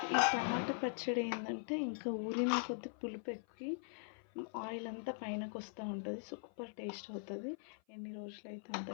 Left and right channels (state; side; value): silent; right; 50 dB below the other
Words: ఈ టమాటా పచ్చడి ఏంటంటే ఇంకా ఊరిన కొద్ది పులుపు ఎక్కి ఆయిల్ అంతా పైనకు వస్తూ ఉంటుంది. సూపర్ టేస్ట్ అవుతుంది. ఎన్ని రోజులైతే అంత